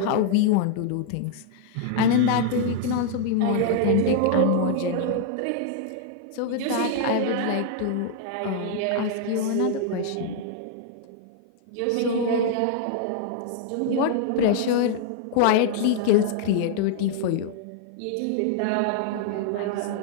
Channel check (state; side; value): different; both; correlation 0.00